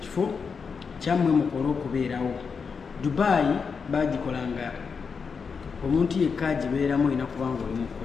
kyammwe mukole okubeerawo. Dubai bagikolanga omuntu yekka agibeeramu olina kubanga oli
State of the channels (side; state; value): right; quieter; 5.6 dB